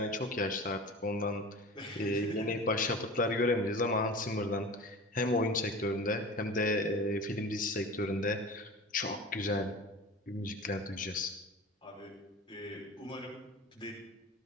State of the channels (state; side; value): normal; both; correlation 0.35